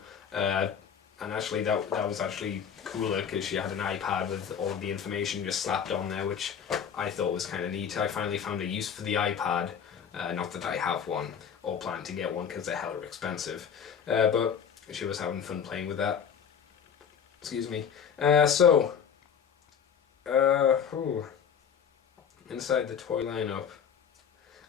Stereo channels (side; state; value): right; quieter; 7.6 dB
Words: And actually that was actually cooler because she had an iPad with all of the information just slapped on there, which I thought was kind of neat. I finally found a use for the iPad, not that I have one or plan to get one because they're hella expensive, but she was having fun playing with that. Excuse me. Inside the toy lineup.